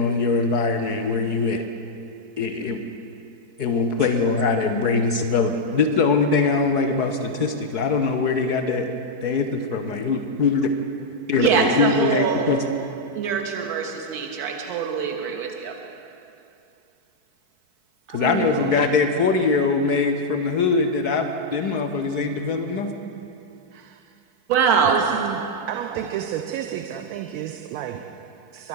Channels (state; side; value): late; left; 4.6 ms